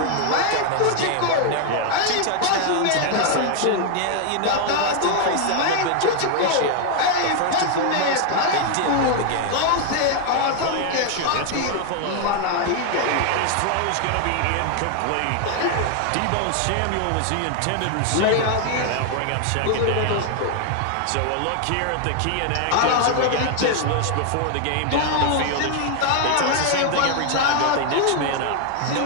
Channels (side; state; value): both; different; correlation 0.00